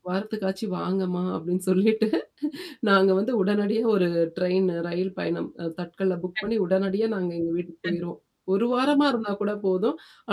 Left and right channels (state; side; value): identical; both; correlation 1.00